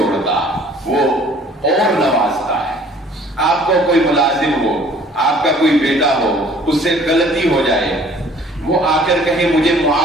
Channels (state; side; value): normal; both; correlation 0.54